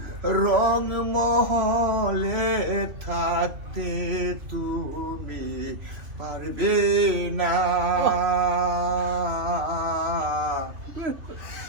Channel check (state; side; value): late; left; 3.0 ms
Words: রংমহলে থাকতে তুমি পারবে না